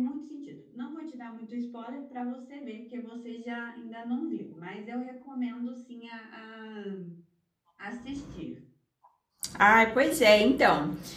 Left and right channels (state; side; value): identical; both; correlation 1.00